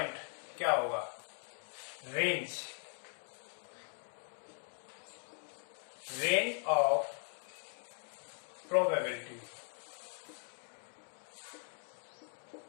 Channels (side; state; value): right; silent; 51 dB below the other